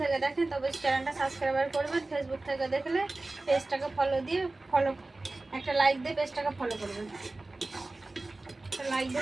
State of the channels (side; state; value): left; quieter; 3.0 dB